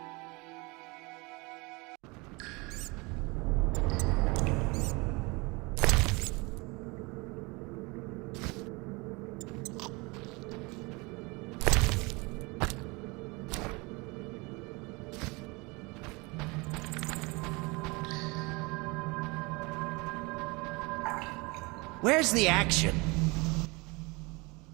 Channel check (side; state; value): left; quieter; 26.3 dB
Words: Where's the action?